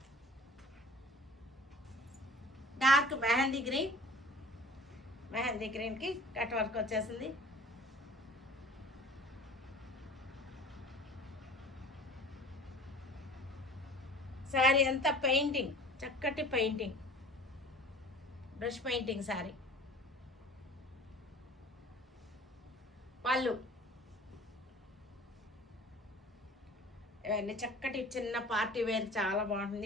డార్క్ మెహందీ గ్రీన్కి కట్ వర్క్ వచ్చేసింది. శారీ అంతా పెయింటింగ్, చక్కటి పెయింటింగ్, బ్రష్ పెయింటింగ్ శారీ. పళ్ళు ఇవన్నీ చక్కటి చిన్న పార్టీ వేర్, చాలా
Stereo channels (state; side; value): normal; both; correlation 0.46